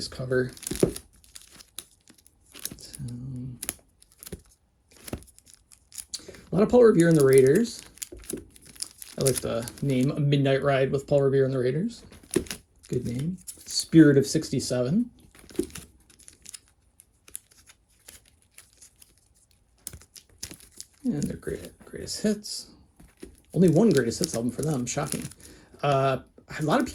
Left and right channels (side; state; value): both; identical; correlation 1.00